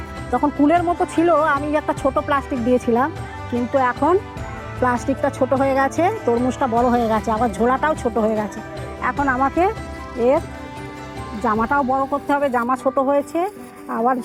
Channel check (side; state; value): both; identical; correlation 1.00